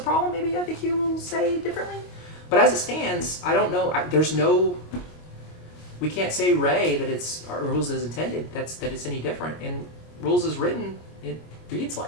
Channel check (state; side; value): late; right; 25 ms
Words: problem, maybe FAQ will say differently. But as it stands, I don't know. We can't say Ray that it's our rules as intended. That it's any different. And rules as written, it reads